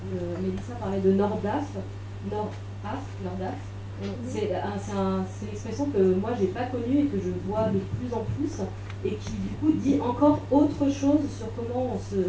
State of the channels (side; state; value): both; identical; correlation 1.00